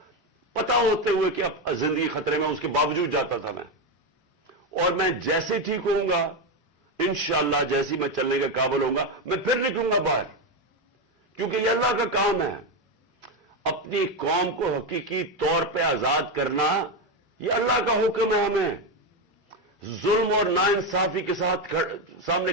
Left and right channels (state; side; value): normal; both; correlation 0.10